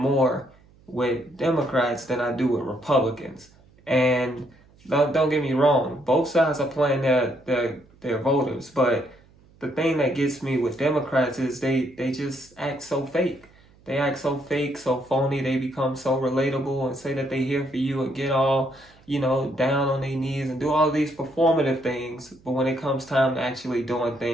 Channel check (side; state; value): right; noise; hum, 28 dB below the sound